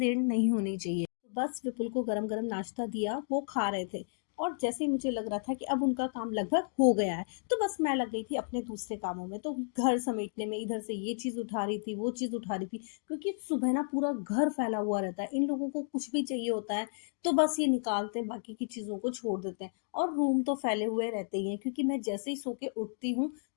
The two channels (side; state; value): right; silent; digital silence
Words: नहीं होनी चाहिए। बस विपुल को गरम गरम नाश्ता दिया, वो खा रहे थे। और जैसे ही मुझे लग रहा था कि अब उनका काम लगभग हो गया है, तो बस मैं लग गई थी अपने दूसरे कामों में। तो घर समेटने में इधर से ये चीज उठा रही थी, वो चीज उठा रही थी, क्योंकि सुबह ना पूरा घर फैला हुआ रहता है। इन लोगों को कुछ भी चाहिए होता है तो बस ये निकालते हैं, बाकी की चीजों को छोड़ देते हैं। और रूम तो फैले हुए रहते ही हैं, क्योंकि मैं जैसे ही सो के उठती हूँ